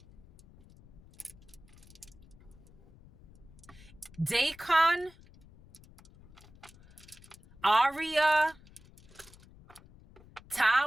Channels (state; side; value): noise; left; rumble, 23 dB below the sound